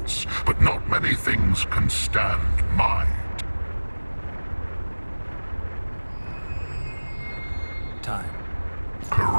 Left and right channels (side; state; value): both; inverted; correlation -1.00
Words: but not many things can stand my time.